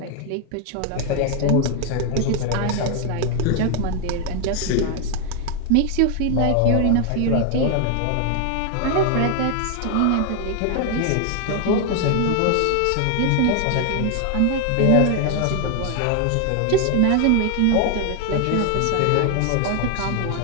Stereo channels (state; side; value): different; both; correlation 0.00